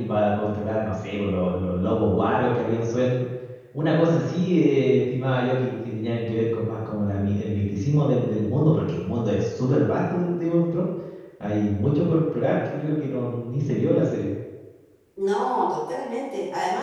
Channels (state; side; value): identical; both; correlation 1.00